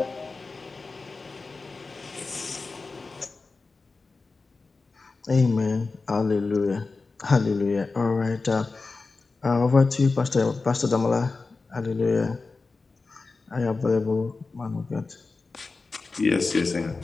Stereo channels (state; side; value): quieter; right; 4.0 dB